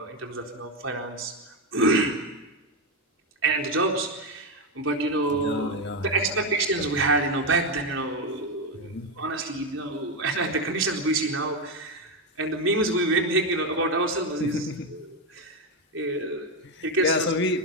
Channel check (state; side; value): normal; both; correlation 0.08